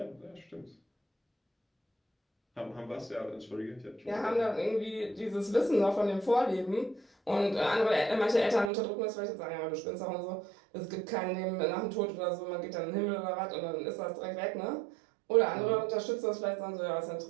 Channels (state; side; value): drops out; left; at 8.7 s